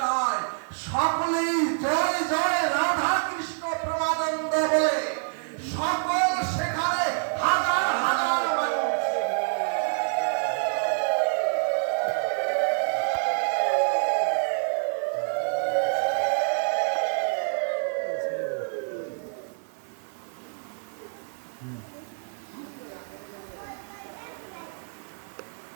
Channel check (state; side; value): silent; left; 60 dB below the other